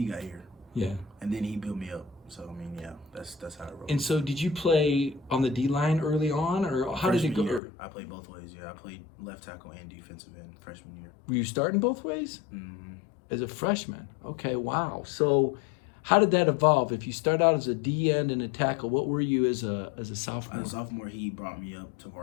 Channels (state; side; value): drops out; right; at 7.6 s